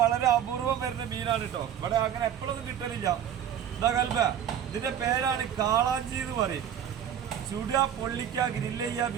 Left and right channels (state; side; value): quieter; left; 9.6 dB